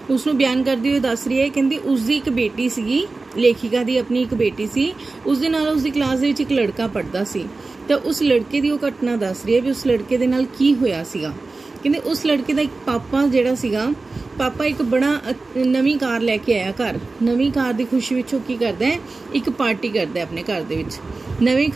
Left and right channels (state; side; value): quieter; left; 3.6 dB